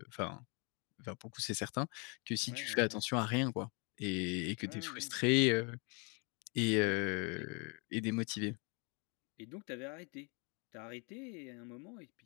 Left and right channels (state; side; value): quieter; right; 34.0 dB